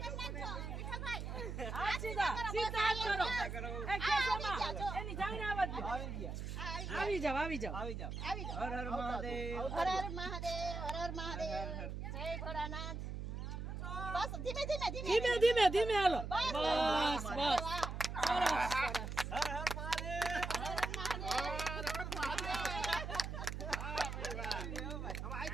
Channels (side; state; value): right; noise; hum, 5 dB below the sound